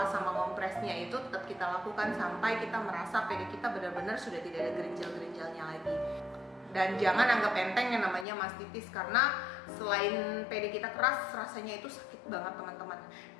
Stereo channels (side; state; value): right; drops out; at 8.2 s